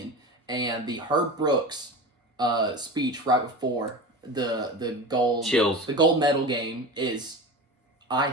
and the Herb Brooks speech right before the gold medal game is, I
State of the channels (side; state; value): both; normal; correlation 0.29